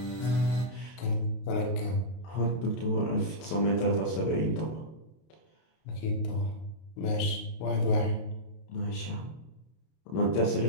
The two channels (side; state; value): right; late; 32 ms